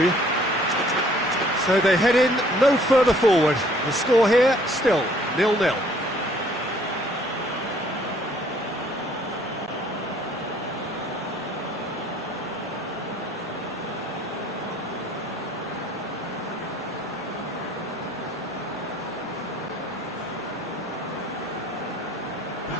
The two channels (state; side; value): normal; both; correlation 0.59